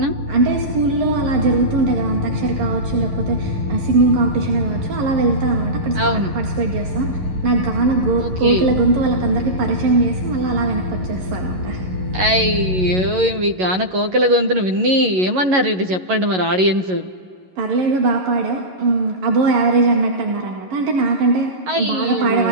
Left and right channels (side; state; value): left; late; 11 ms